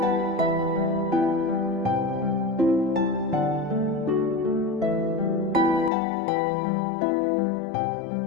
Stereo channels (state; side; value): drops out; right; at 5.9 s